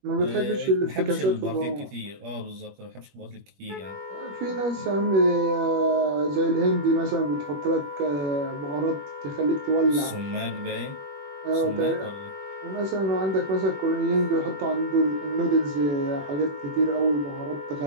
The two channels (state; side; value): late; left; 21 ms